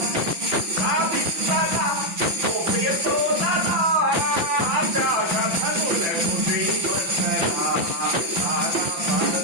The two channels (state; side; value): late; left; 5.9 ms